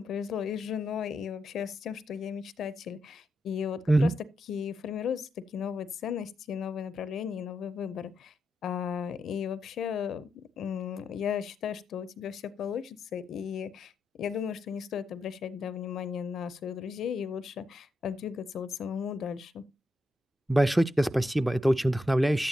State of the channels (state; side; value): normal; both; correlation 0.84